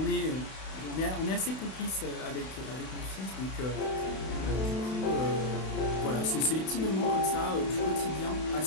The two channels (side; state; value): right; late; 32 ms